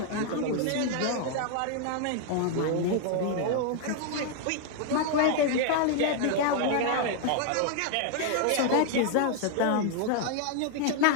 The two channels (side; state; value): both; different; correlation 0.00